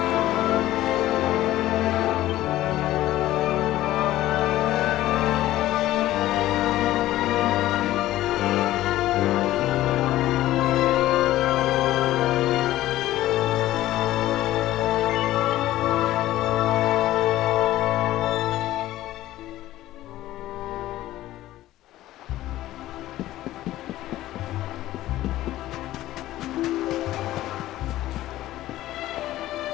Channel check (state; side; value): quieter; right; 15.1 dB